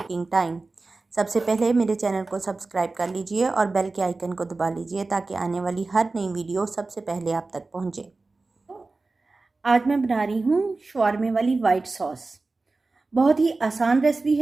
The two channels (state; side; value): quieter; left; 3.5 dB